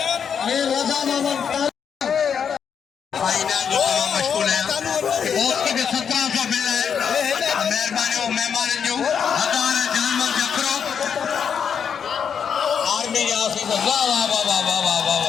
रजा मोहम्मद फाइनल जो मशगूल है उसके भी 1700 बिल है मेहरबानी और मेहमान जो हज़ार जानवर जकरो आर्मी के ऑफिसर वाह वाह वाह वाह वाह वाह वाह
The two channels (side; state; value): right; quieter; 7.3 dB